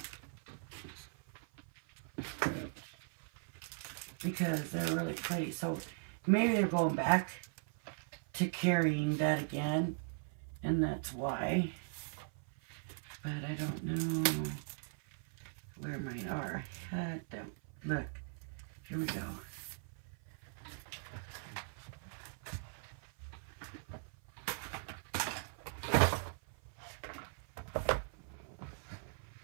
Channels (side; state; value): left; silent; 51 dB below the other